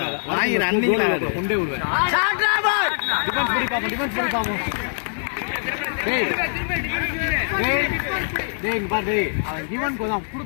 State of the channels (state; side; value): silent; right; digital silence